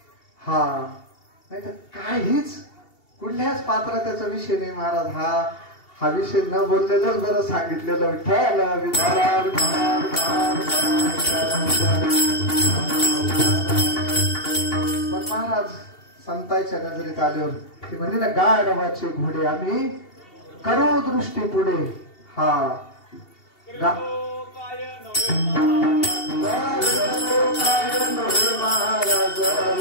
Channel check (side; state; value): right; late; 2.7 ms